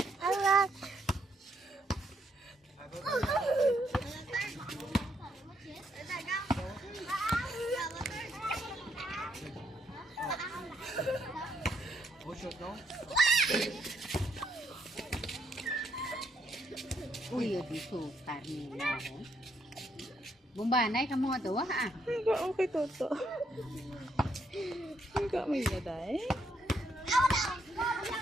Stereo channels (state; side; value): normal; both; correlation 0.75